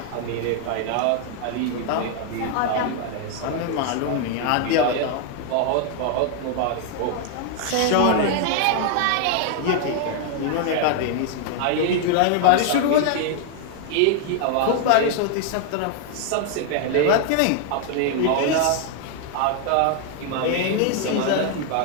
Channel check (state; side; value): different; both; correlation 0.00